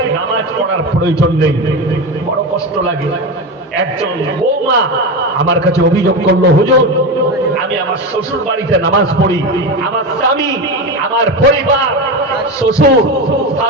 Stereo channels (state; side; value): normal; both; correlation 0.19